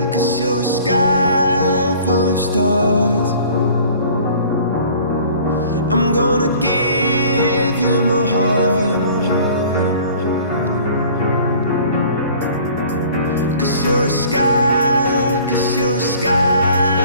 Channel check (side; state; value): both; inverted; correlation -0.49